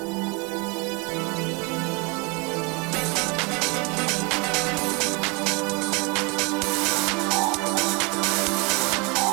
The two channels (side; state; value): left; quieter; 29.6 dB